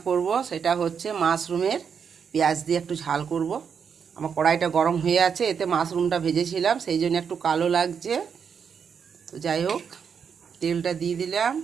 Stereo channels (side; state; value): left; quieter; 6.8 dB